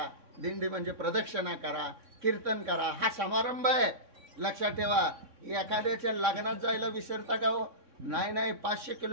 दिंडी म्हणजे प्रदक्षिणा करा, कीर्तन करा, हा समारंभ आहे। लक्षात ठेवा, एखाद्याच्या लग्नात जायला विसरता का हो? नाही 500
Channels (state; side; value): late; left; 3.6 ms